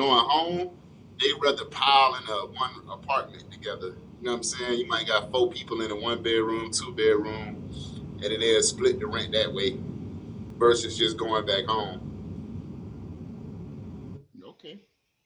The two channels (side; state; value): both; identical; correlation 1.00